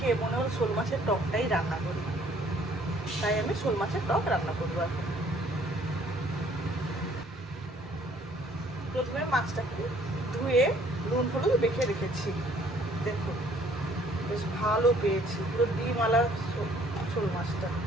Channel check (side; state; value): both; normal; correlation 0.60